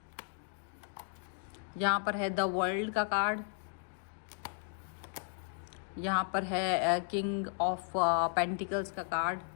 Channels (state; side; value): silent; right; 54 dB below the other